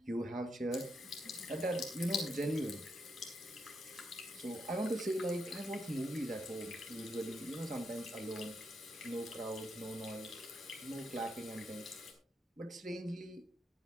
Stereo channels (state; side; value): normal; both; correlation 0.80